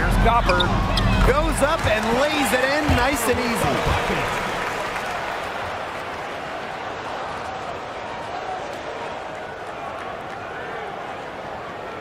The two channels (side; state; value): both; identical; correlation 1.00